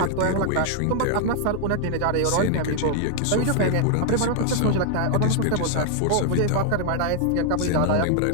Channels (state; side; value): different; both; correlation 0.00